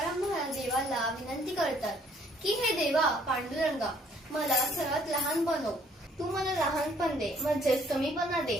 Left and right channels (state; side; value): normal; both; correlation 0.62